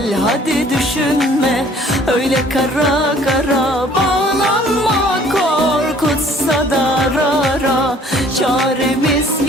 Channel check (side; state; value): both; normal; correlation 0.56